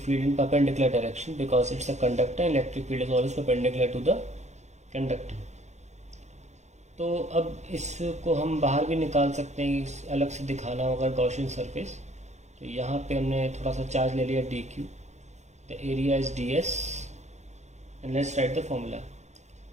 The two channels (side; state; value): left; late; 0.33 ms